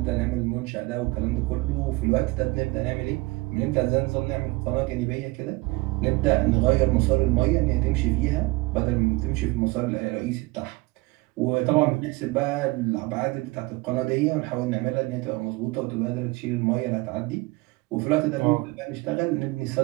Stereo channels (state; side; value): quieter; left; 22.9 dB